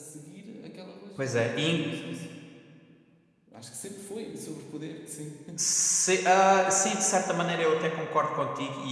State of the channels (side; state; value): both; identical; correlation 1.00